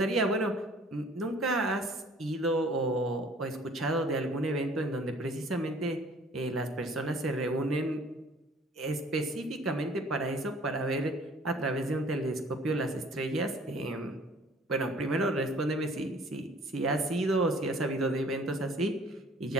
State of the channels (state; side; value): normal; both; correlation 0.53